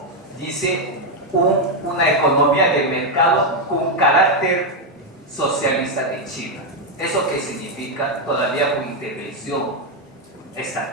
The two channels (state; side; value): normal; both; correlation 0.02